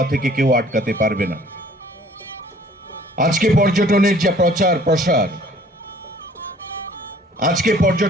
থেকে কেউ আটকাতে পারবে না আজকে পর্যটনের যে প্রচার প্রসার আজকে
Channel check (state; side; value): normal; both; correlation 0.54